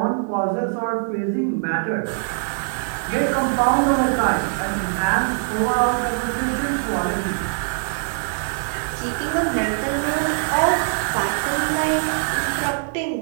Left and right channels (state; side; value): silent; left; 64 dB below the other